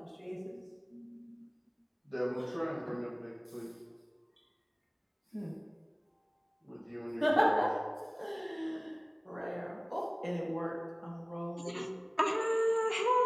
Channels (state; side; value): identical; both; correlation 1.00